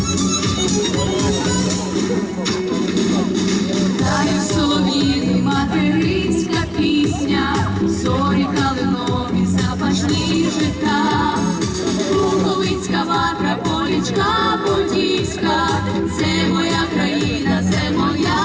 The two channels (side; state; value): both; identical; correlation 1.00